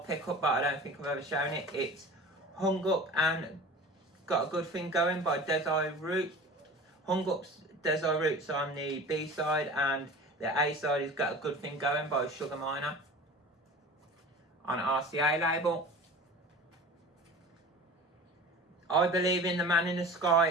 pickup, but I don't think I've ever shown it. It's Hung Up and Got a Good Thing Going by Desire Root. Hung Up's Desire Root's on the B side, and the A side has Got a Good Thing Going by Sugar Miner on RCA label. I Believe in the Man in the Sky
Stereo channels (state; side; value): normal; both; correlation 0.38